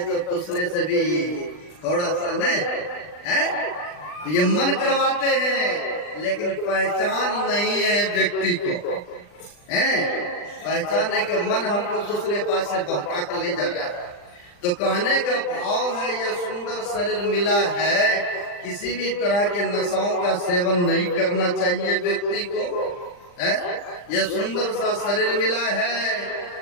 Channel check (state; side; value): late; right; 40 ms